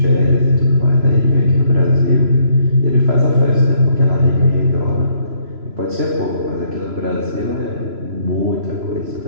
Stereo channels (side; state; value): left; late; 3.0 ms